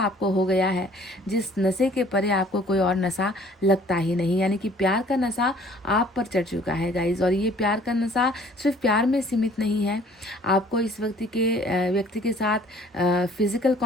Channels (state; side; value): normal; both; correlation 0.55